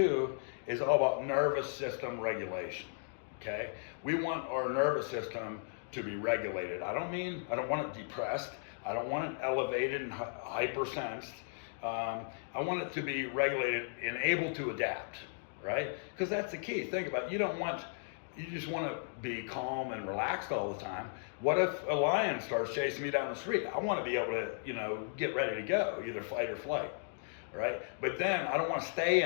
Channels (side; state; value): right; silent; digital silence